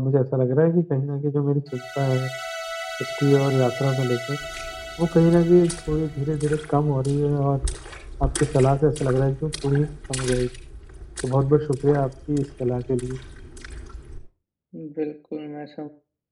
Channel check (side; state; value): both; identical; correlation 1.00